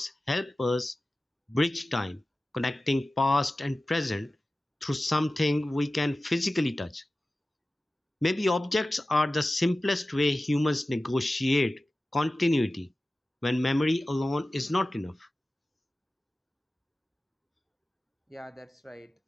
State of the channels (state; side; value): normal; both; correlation 0.96